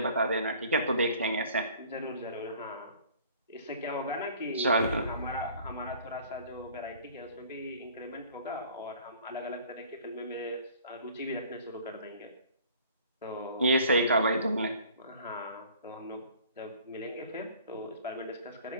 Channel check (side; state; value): both; inverted; correlation -0.51